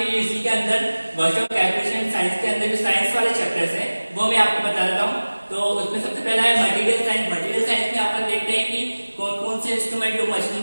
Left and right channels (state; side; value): inverted; both; correlation -1.00